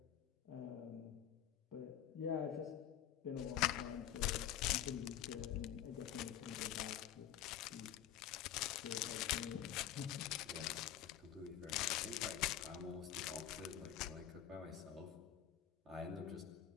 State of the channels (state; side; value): quieter; right; 10.7 dB